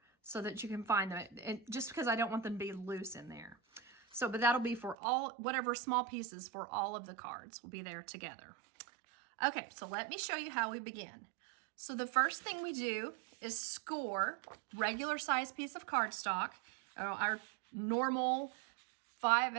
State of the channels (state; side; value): drops out; left; at 5.0 s